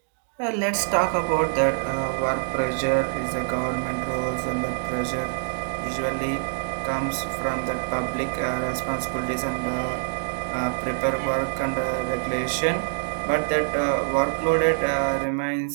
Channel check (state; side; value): silent; left; digital silence